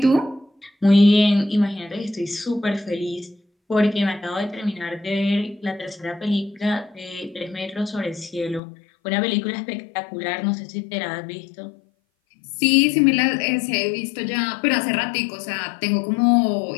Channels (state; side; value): drops out; right; at 8.6 s